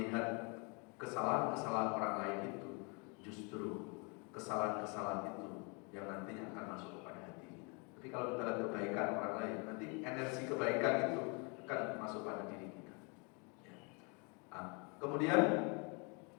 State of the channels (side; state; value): right; quieter; 33.3 dB